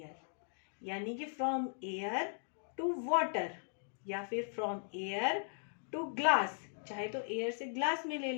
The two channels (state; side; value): silent; right; digital silence